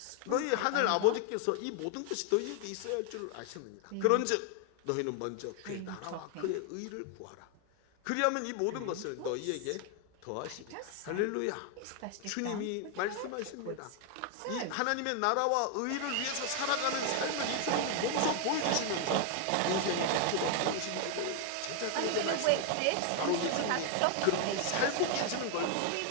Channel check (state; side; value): different; both; correlation 0.00